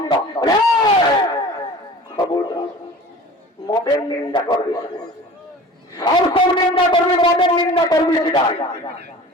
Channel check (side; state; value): both; normal; correlation 0.41